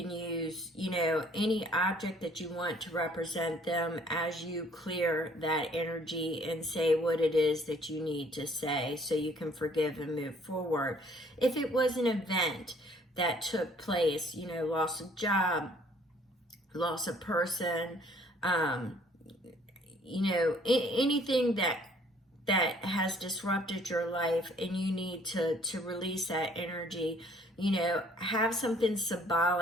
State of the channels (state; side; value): normal; both; correlation 0.59